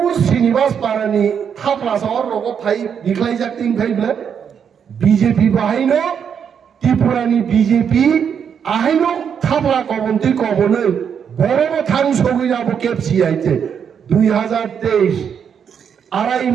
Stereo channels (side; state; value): left; quieter; 7.5 dB